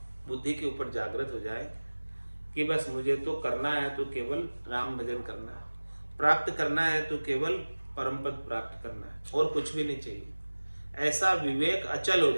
बुद्धि के ऊपर जागृत हो जाए कि बस मुझे तो करना है तो केवल राम भजन करना है, प्राप्त करना है तो केवल परम पद प्राप्त करना है, और कुछ भी नहीं चाहिए। ऐसा विवेक अचल हो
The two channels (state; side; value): inverted; both; correlation -1.00